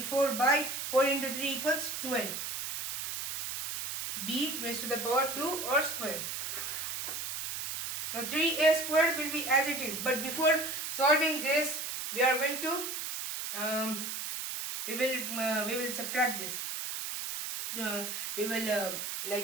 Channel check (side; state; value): right; noise; hiss, 5 dB below the sound